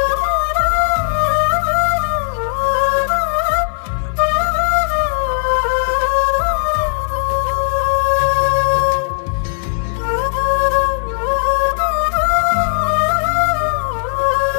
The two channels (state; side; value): silent; right; 56 dB below the other